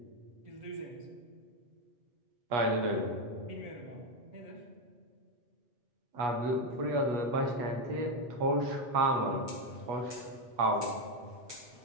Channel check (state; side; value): late; left; 8.3 ms